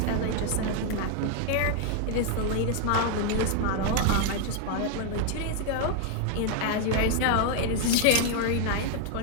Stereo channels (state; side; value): different; both; correlation 0.00